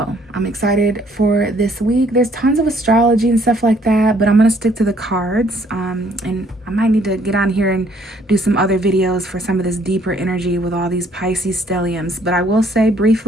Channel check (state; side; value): normal; both; correlation 0.64